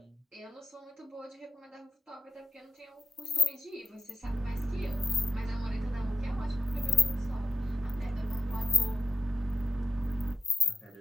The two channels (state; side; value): normal; both; correlation 0.91